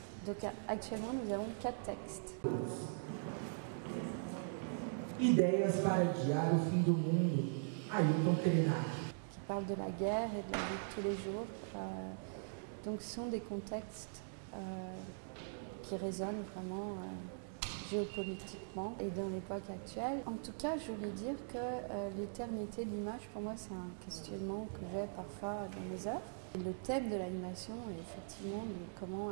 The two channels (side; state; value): left; silent; digital silence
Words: Donc actuellement, nous avons 4 textes. Ideias para adiar o fim do mundo, Ailton Krenak. Qui parlent de la guerre et de la vie de tous les jours. Donc ce sont des contextes qui résonnent vraiment géopolitiquement et dans l'époque actuelle. En tout cas, je voulais dire que l'éternité de l'image, pour moi, c'est un questionnement que j'ai parfois dans mes œuvres. Et le thème de l'animation est effectivement de comment